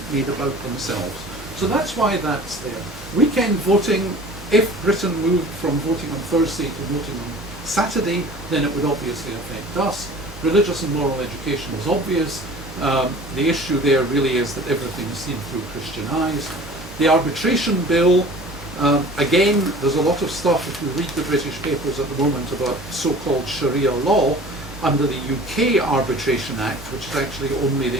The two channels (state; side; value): normal; both; correlation 0.44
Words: made about themselves. So that's why that's there. Weekend voting, if Britain moved from voting on Thursday to voting on Saturday, then it would obviously affect us. Religious and moral education is obvious. The issue there really is that everything is seen through Christian eyes. The arbitration bill, again, there's a lot of stuff, if you read the British papers at the moment, about so-called Sharia law under the UK Arbitration Act, which is actually only the